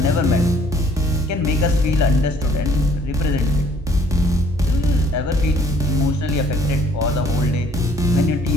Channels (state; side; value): normal; both; correlation 0.60